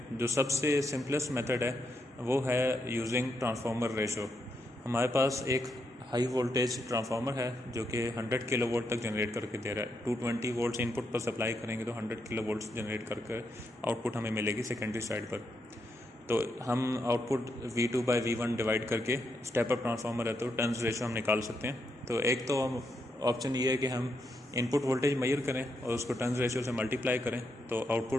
जो सबसे सिंपलेस्ट मेथड है वो है यूजिंग ट्रांसफार्मर रेशो। हमारे पास एक हाई वोल्टेज ट्रांसफार्मर है जो कि 100 किलो वोल्ट तक जनरेट करके दे रहा है। 220 वोल्ट्स इनपुट पर सप्लाई करेंगे तो 100 किलो वोल्ट्स जनरेट करके आउटपुट हमें मिलेगी सेकेंडरी साइड पर। तो हम आउटपुट V2/V1 डिवाइड करके स्टेप अप ट्रांसफार्मर है तो टर्न्स रेशो हम निकाल सकते हैं। तो एक तो हम ऑप्शन ये है कि हम इनपुट वोल्टेज मेजर करें और उसको टर्न्स रेशो से मल्टीप्लाई करें तो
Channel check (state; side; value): normal; both; correlation 0.81